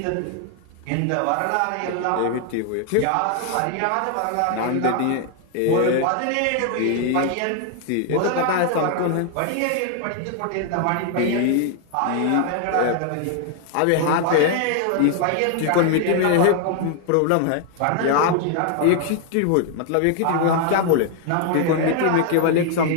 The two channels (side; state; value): both; different; correlation 0.00